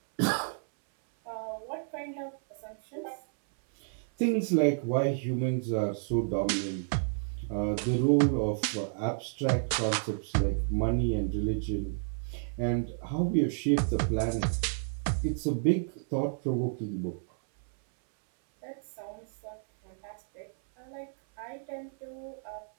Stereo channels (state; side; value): silent; left; 57 dB below the other